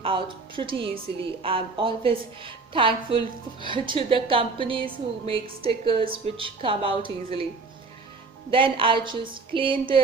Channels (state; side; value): quieter; left; 4.0 dB